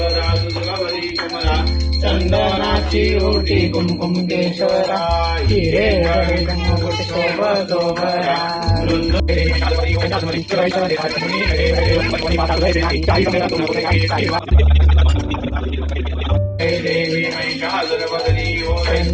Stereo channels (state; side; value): identical; both; correlation 1.00